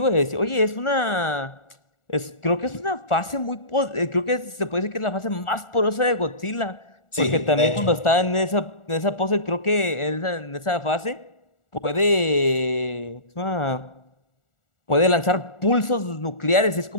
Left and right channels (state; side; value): late; right; 1.4 ms